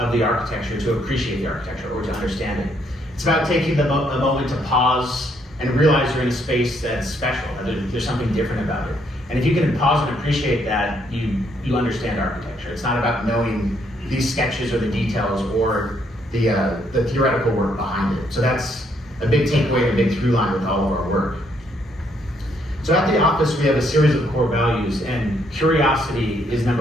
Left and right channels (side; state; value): both; normal; correlation 0.71